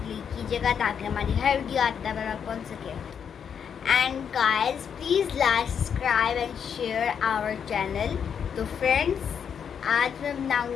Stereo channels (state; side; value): quieter; right; 7.5 dB